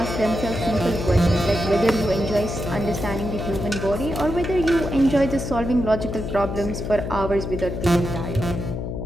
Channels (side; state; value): left; noise; hum, 5 dB below the sound